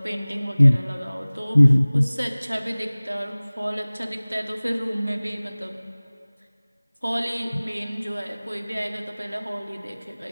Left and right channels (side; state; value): both; inverted; correlation -1.00